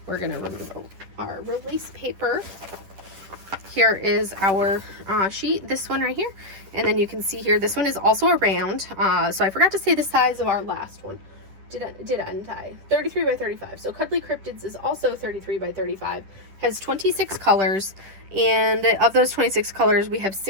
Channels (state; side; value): late; left; 10 ms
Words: We're going to remove our release paper. Here is our sheet, this one right here. And then you can see here, this one is also a round. So I forgot to say the size of our last one. Didn't I? 33 by 35. So Cuddly Cryptids is also 33 by 35. Has 26 colors. And of those 26 colors, we have